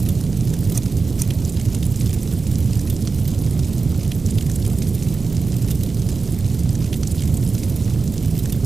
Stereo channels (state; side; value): quieter; left; 4.3 dB